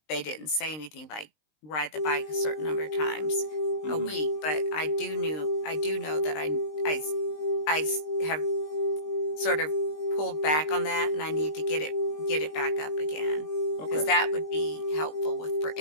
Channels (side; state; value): right; late; 20 ms